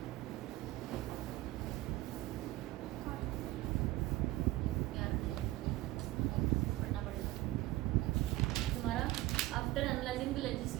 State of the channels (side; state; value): left; quieter; 17.7 dB